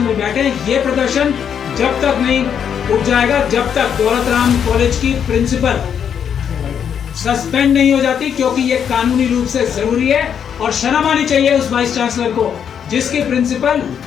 में बैठे। ये प्रदर्शन जब तक नहीं उठ जाएगा, जब तक दौलत राम कॉलेज की प्रिंसिपल सस्पेंड नहीं हो जाती, क्योंकि ये कानूनी रूप से जरूरी है। और शर्म आनी चाहिए उस वाइस चांसलर को जिसकी प्रिंसिपल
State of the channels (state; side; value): quieter; right; 8.1 dB